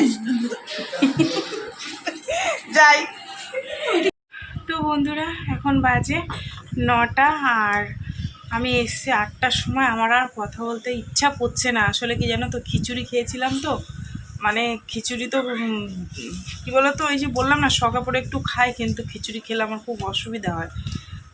যাই তো বন্ধুরা, এখন বাজে 9টা, আর আমি এসছি 8টার সময়। আমার আর কথা বলতে ইচ্ছা করছে না। আসলে কি জানো তো, খিচুড়ি খেয়েছিলাম তো, মানে খিচুড়ি তো কী বলো তো, ওই যে বললাম না শখা পড়ে একটু খাই, কিন্তু খিচুড়ি খেলে আমার খুব অসুবিধা হয়।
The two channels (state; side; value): identical; both; correlation 1.00